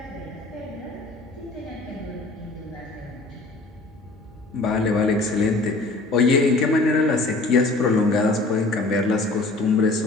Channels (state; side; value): quieter; right; 3.1 dB